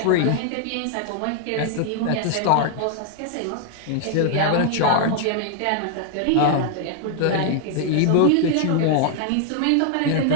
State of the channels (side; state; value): both; different; correlation 0.00